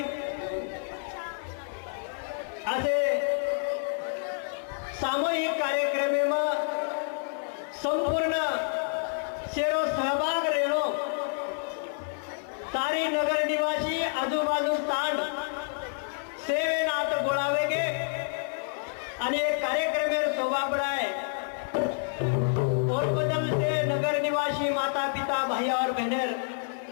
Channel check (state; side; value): silent; right; 59 dB below the other